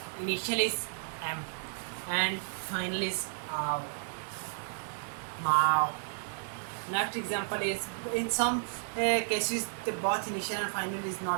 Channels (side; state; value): left; silent; digital silence